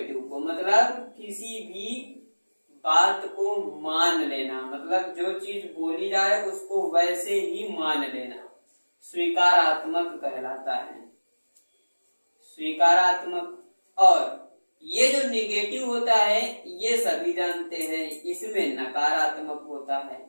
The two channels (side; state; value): both; inverted; correlation -1.00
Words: को मतलब किसी भी बात को मान लेना, मतलब जो चीज बोली जाए उसको वैसे ही मान लेना स्वीकारात्मक कहलाता है, स्वीकारात्मक। और ये जो निगेटिव होता है ये सभी जानते हैं, इसमें नकारात्मक होता है।